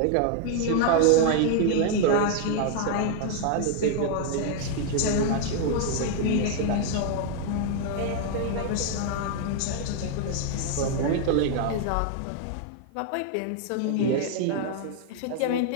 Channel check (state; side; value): different; both; correlation 0.00